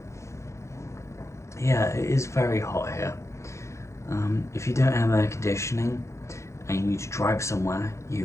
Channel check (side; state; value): right; late; 0.14 ms